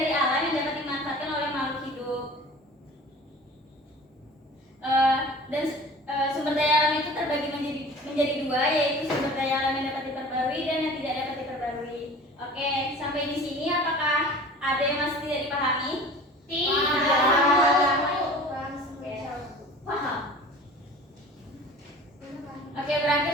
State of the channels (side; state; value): both; normal; correlation 0.42